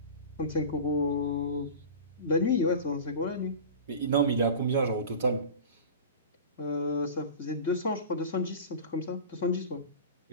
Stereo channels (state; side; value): inverted; both; correlation -0.33